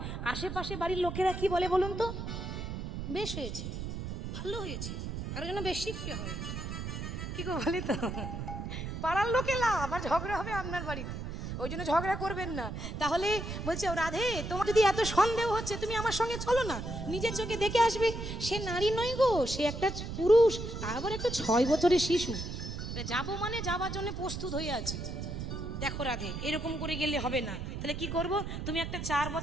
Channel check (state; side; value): noise; right; rumble, 6 dB below the sound